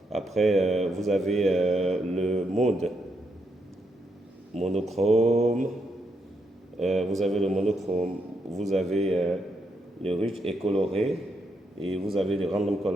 Après, vous avez le mode monochrome. Vous avez le monochrome. Vous avez le rich et coloré. Et vous avez le random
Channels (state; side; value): normal; both; correlation 0.80